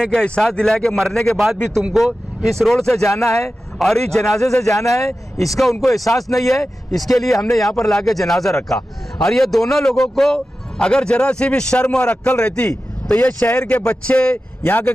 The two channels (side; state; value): both; normal; correlation 0.94